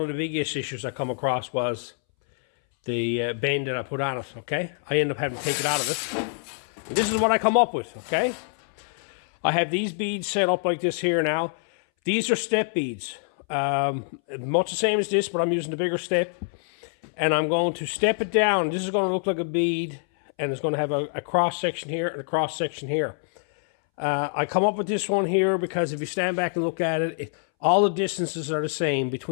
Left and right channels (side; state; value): right; silent; 61 dB below the other